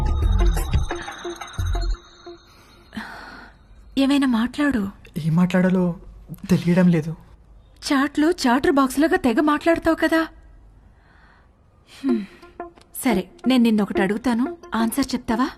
ఏమైనా మాట్లాడు. ఏం మాట్లాడాలో తెలియడం లేదు. చాట్లో చాటర్ బాక్స్ లాగా తెగ మాట్లాడతావు కదా. సరే, నేను నిన్నొకటి అడుగుతాను, ఆన్సర్ చెప్తావా?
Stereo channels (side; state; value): both; identical; correlation 1.00